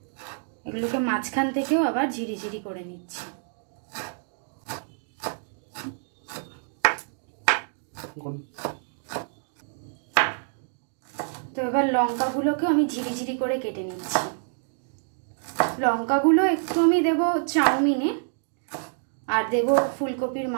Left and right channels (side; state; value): left; silent; digital silence